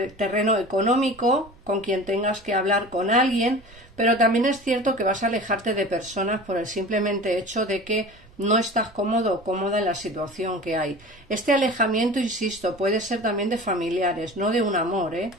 el terreno económico, con quien tengas que hablar con alguien, pero también es cierto que vas a alejarte de personas por el simplemente hecho de que no estás cómodo o cómoda en la situación que hay. Este alejamiento, insisto, puede ser también de familiares, no de un amor, ¿eh?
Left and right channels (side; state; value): right; noise; rumble, 25 dB below the sound